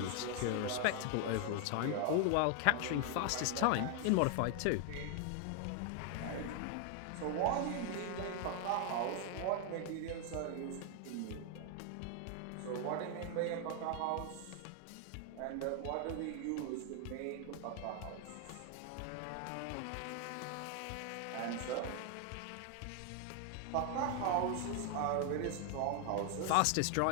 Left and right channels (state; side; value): different; both; correlation 0.00